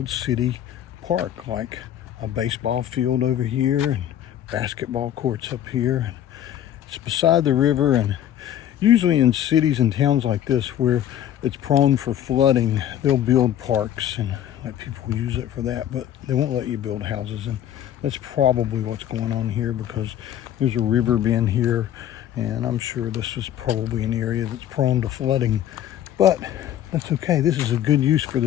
city park, like a baseball field over here and basketball courts up here. It's beside the river, and usually in cities and towns like this where it's prone for flooding, they'll build parks and let people use it for that, but they won't let you build houses. And that's probably what's going on here, because there's a river being here, and I'm sure this is probably an area that's prone to flooding, but that's okay. This is a good use for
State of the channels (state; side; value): quieter; right; 11.0 dB